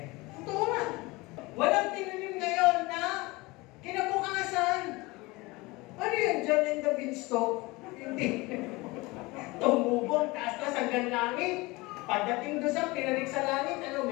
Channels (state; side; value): quieter; right; 22.9 dB